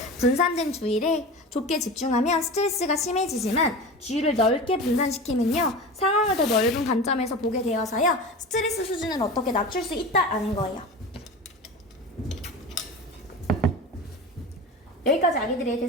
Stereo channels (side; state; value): both; normal; correlation 0.31